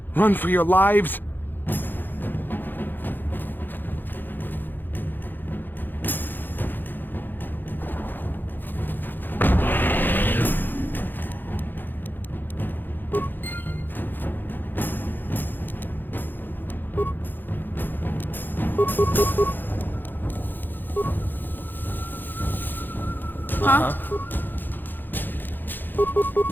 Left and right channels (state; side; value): late; right; 0.091 ms